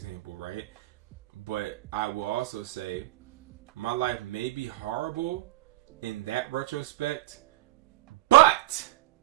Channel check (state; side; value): quieter; left; 17.4 dB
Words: right? But I will also say my life may be horrible in that retrospect, but